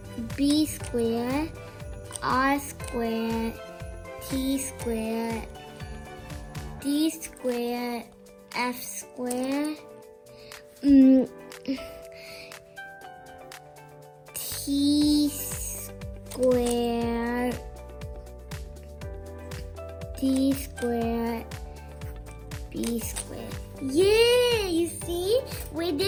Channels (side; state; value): both; identical; correlation 1.00